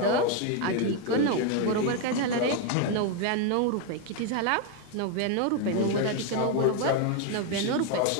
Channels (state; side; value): different; both; correlation 0.01